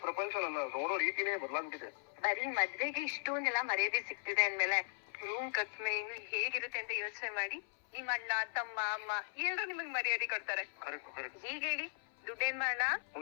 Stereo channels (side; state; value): right; silent; 52 dB below the other